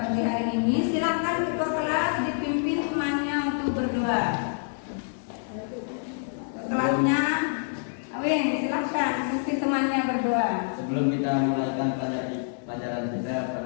hari ini. Silakan ketua kelas dipimpin temannya untuk berdoa. Kelasnya, Awin, silakan pimpin temannya berdoa. Sebelum kita mulaikan pelajaran kita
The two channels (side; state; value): right; silent; 60 dB below the other